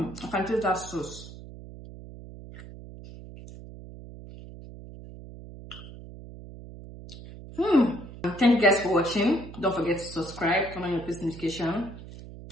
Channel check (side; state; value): right; noise; hum, 15 dB below the sound